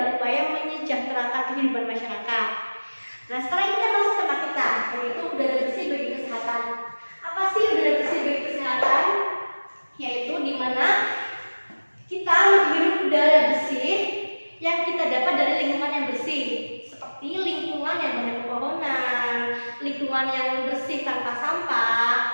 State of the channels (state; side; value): inverted; both; correlation -1.00